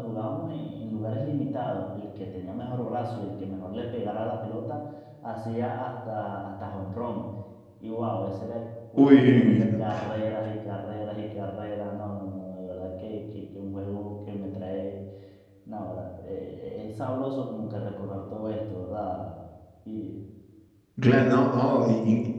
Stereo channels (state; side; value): identical; both; correlation 1.00